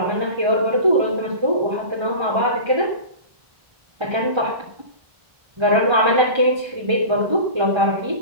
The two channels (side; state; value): left; late; 1.3 ms